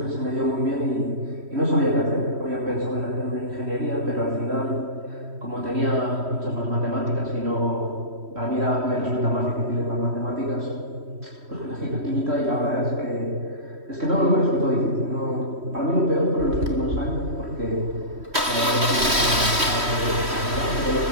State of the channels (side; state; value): left; late; 3.1 ms